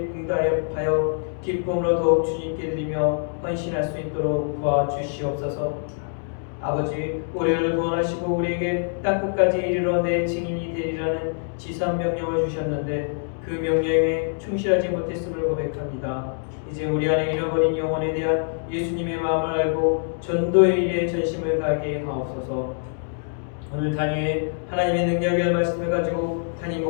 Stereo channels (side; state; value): right; silent; digital silence